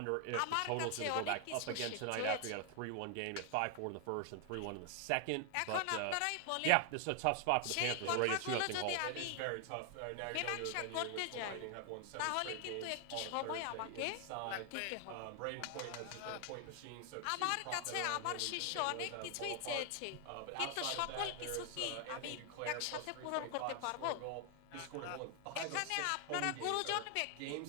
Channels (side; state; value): both; different; correlation 0.00